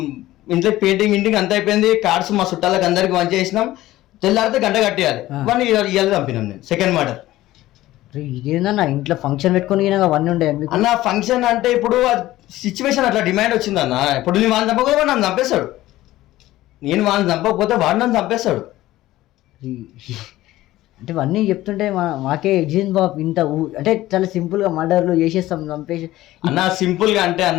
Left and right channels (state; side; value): quieter; right; 16.0 dB